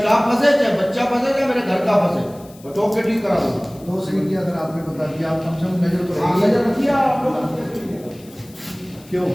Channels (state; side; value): noise; left; hiss, 24 dB below the sound